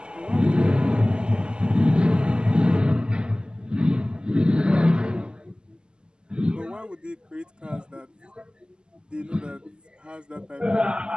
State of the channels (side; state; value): left; late; 0.048 ms